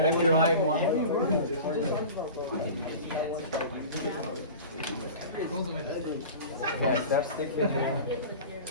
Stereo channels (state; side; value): inverted; both; correlation -0.36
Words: let me write one. Okay, step stick here.